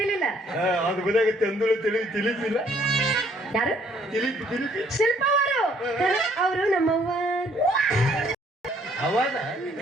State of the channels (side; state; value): both; normal; correlation 0.64